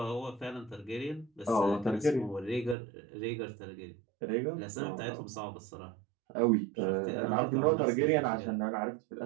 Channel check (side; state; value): left; drops out; at 2.8 s